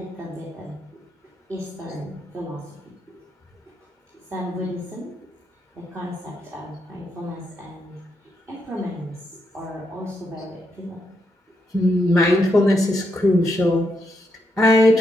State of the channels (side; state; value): both; normal; correlation 0.80